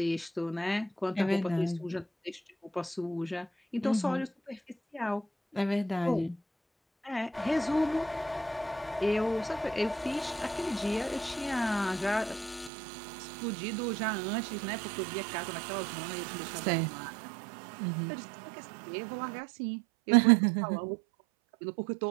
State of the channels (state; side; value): drops out; left; at 12.7 s